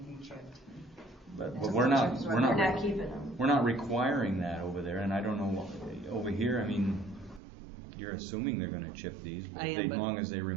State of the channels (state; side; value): drops out; left; at 7.4 s